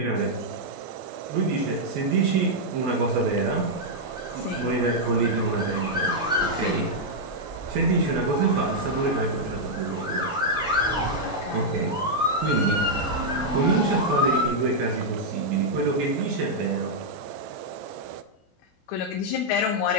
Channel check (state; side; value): normal; both; correlation -0.04